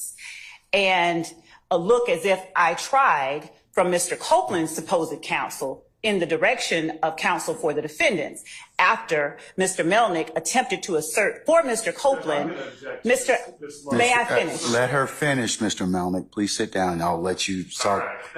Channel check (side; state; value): both; identical; correlation 1.00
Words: And a look as if I tried from Mr. Copeland's supposed counsel in the direction of counsel for the defendants after Mr. Melnick attempted to assert for Mr. Copeland. May I finish? Let her finish, Mr. Melnick. Please sit down. I'll let you start.